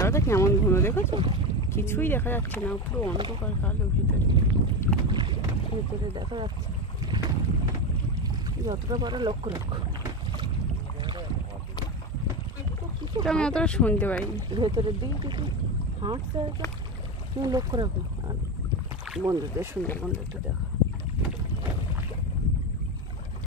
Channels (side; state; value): both; normal; correlation 0.18